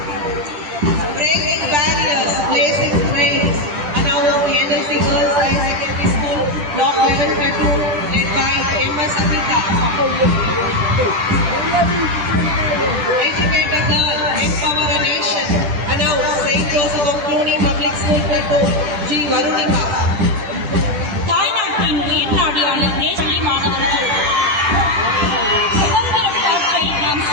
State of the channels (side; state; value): left; late; 10 ms